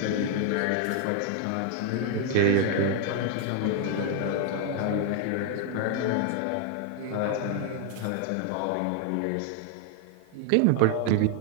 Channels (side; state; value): both; different; correlation 0.00